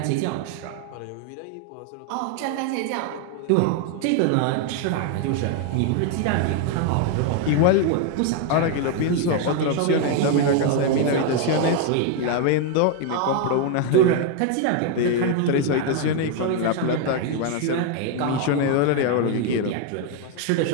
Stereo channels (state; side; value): different; both; correlation 0.01